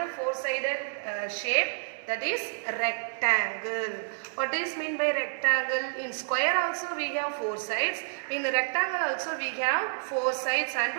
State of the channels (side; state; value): left; silent; digital silence